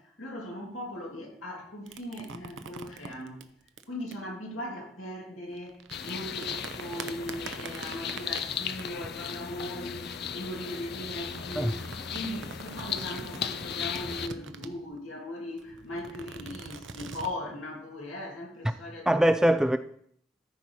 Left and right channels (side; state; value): both; normal; correlation 0.72